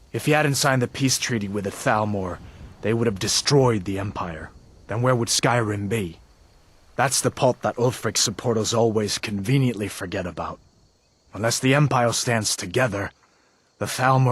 If he hadn't signed the peace treaty with the Thalmor, they would have destroyed the Empire. Then where would Skyrim be? That's the part that Ulfric's supporters always conveniently forget about. Unless the Empire stands together, the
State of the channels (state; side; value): identical; both; correlation 1.00